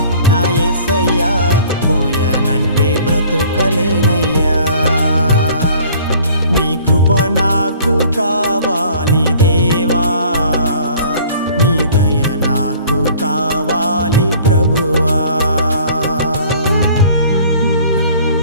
నా యేసయ్యా, పోయానంటే బ్రతుకలేనయ్యా. నీ కృప నాకు కావాలి దేవా, నీ దయ నాకు కావాలి ప్రభువా.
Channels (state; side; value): inverted; both; correlation -0.52